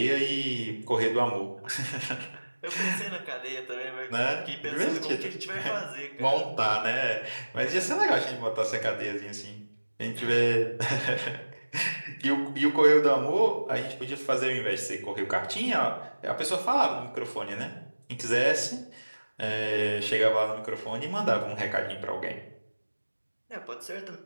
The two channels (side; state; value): both; inverted; correlation -1.00